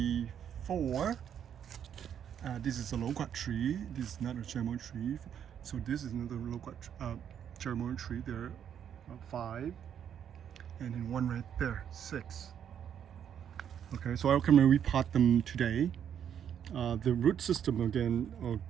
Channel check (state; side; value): quieter; left; 8.9 dB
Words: 4. This is a loquat tree. This is not a cherry tree. So this is another loquat cherry tree. There are 5, and then 1 right there, 6. Okay, so I'm gonna repot them today. The root system again are